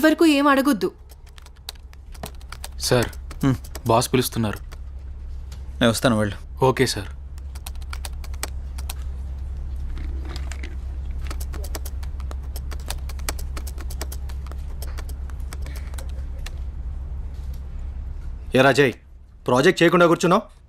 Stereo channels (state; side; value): identical; both; correlation 1.00